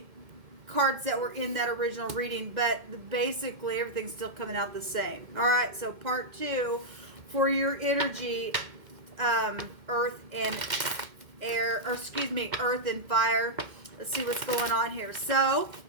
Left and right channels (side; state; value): left; late; 2.1 ms